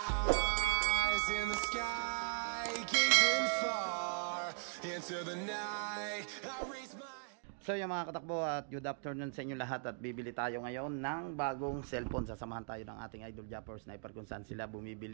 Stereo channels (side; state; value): left; silent; 52 dB below the other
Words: Eyes in the sky, gazing far into the night. I raise my. So yung mga katakbo at good afternoon sa inyo lahat at bibili tayo ngayon ng bagong cellphone. Sasamahan tayo ng ating idol Japper Sniper kung saan sila